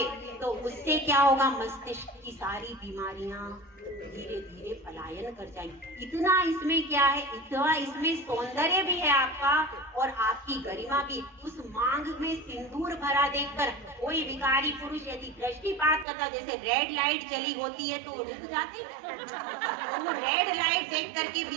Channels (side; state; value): left; drops out; at 16.1 s